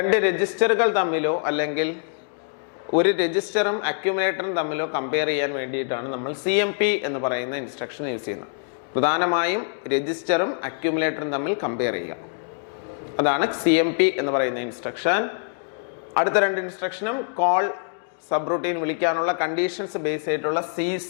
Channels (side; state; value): right; silent; digital silence